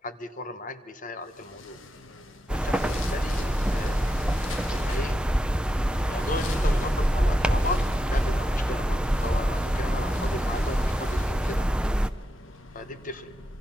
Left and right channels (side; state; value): both; normal; correlation 0.86